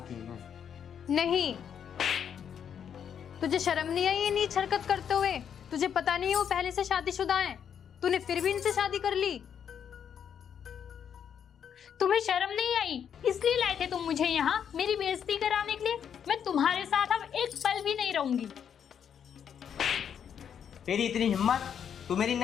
है। नहीं, तुझे शर्म नहीं आई ये नीच हरकत करते हुए? तुझे पता नहीं है वो पहले से शादीशुदा हैं? तूने फिर भी इनसे शादी कर ली। तुम्हें शर्म नहीं आई? इसलिए लाए थे तुम मुझे यहाँ मेरी बेइज्जती कराने के लिए? मैं तुम्हारे साथ अब एक पल भी नहीं रहूंगी। तेरी इतनी हिम्मत, तू मेरी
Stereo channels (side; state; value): right; quieter; 8.2 dB